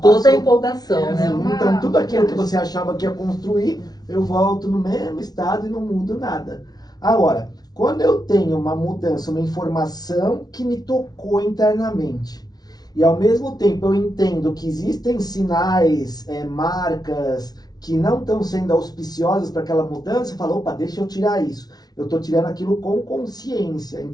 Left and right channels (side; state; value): right; late; 0.19 ms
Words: toda a empolgação, né? Então tudo aquilo que você achava que ia construir, eu volto no mesmo estado e não mudo nada. Agora, quando eu tenho uma mudança, uma informação que me tocou internamente, e ao mesmo tempo eu entendo que existem sinais, marcas que não estão sendo auspiciosas para aquela mudança, eu falo, opa, deixa eu tirar isso. Eu estou tirando aquilo com consciência.